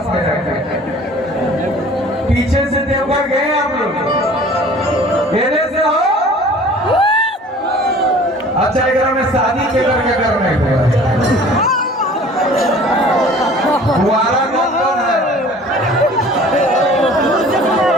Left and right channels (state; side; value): normal; both; correlation 0.48